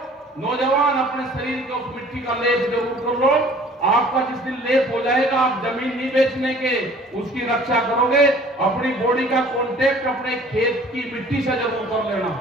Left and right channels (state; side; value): normal; both; correlation 0.51